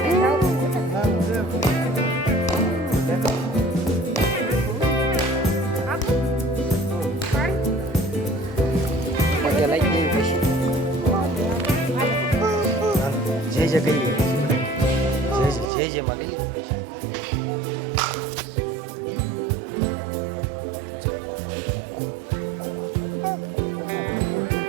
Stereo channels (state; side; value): drops out; left; at 15.7 s